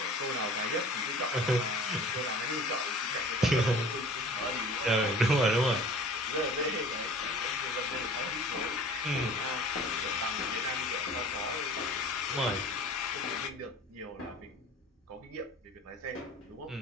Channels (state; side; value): normal; both; correlation 0.44